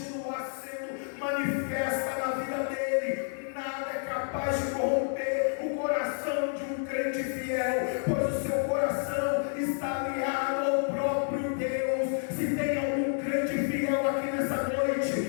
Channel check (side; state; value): right; silent; digital silence